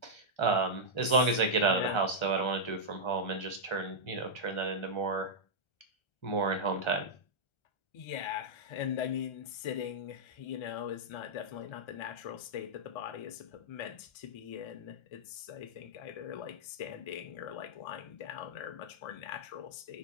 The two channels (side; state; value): right; late; 1.3 ms